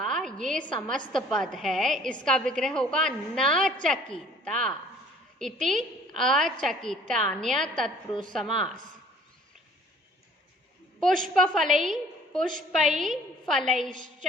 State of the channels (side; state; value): both; normal; correlation 0.54